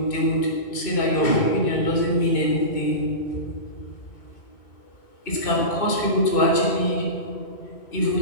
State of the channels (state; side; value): late; right; 2.6 ms